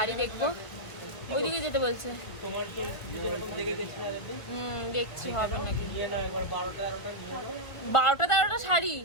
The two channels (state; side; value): late; right; 1.4 ms